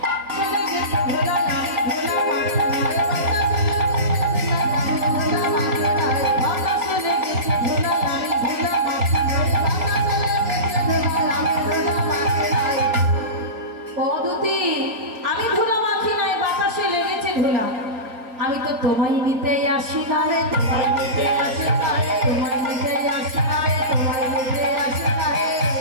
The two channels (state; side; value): late; left; 3.9 ms